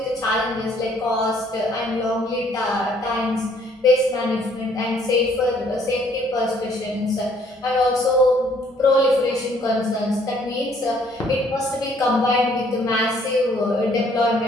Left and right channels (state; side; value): normal; both; correlation 0.63